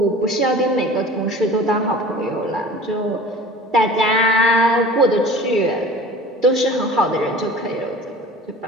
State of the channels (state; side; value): normal; both; correlation 0.42